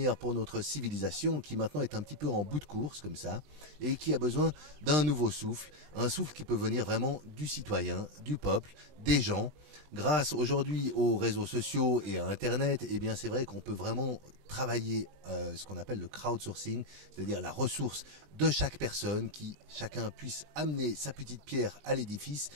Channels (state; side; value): late; left; 20 ms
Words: pour notre civilisation qui maintenant est un petit peu en bout de course comme ça et qui a besoin d'un nouveau souffle, un souffle qui peut venir vraiment du citoyen, du peuple, des gens. Grâce aujourd'hui aux réseaux sociaux et à Internet, eh bien c'est vrai qu'on peut vraiment travailler ce qu'on appelle le crowdsourcing, c'est-à-dire la ressource de chaque personne, qui chacun puisse amener sa petite pierre à l'édifice